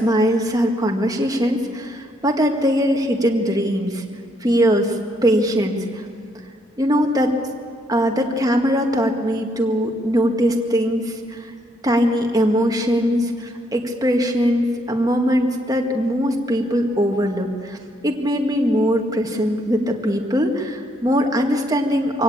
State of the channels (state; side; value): normal; both; correlation 0.73